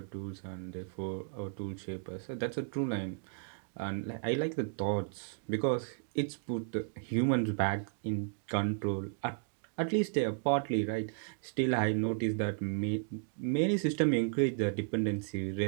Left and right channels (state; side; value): silent; left; digital silence